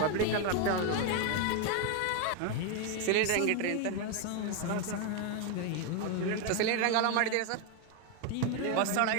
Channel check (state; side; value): different; both; correlation 0.01